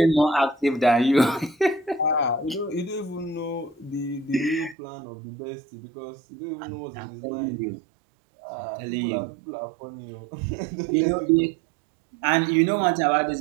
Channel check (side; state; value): left; drops out; at 4.8 s